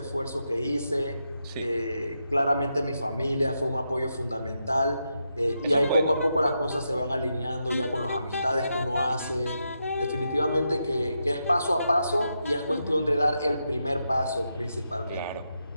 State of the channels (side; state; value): both; inverted; correlation -0.84